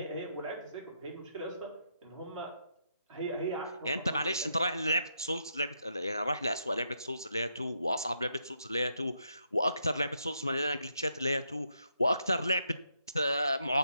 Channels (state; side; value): inverted; both; correlation -0.79